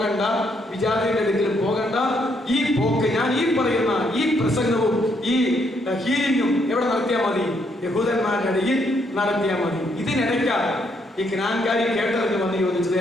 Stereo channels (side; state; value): both; normal; correlation 0.73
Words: വിജാതിയുടെ അടുക്കലും പോകണ്ട. ഈ പോക്ക്, ഞാൻ ഈ പറയുന്ന ഈ പ്രസംഗവും ഈ ഹീലിംഗും എവിടെ നടത്തിയാൽ മതി? യഹൂദന്മാരുടെ ഇടയിൽ നടത്തിയാൽ മതി. ഇതിനിടയ്ക്കാണ് ഈ ജ്ഞാൻകാരി കേട്ടറിഞ്ഞ് വന്ന് ചോദിച്ചത്,